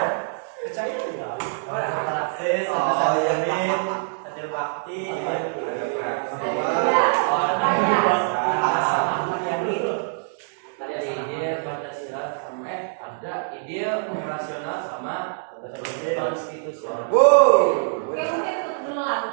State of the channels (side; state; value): left; silent; digital silence